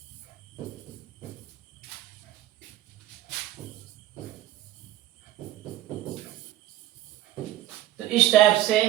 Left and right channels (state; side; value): quieter; left; 14.2 dB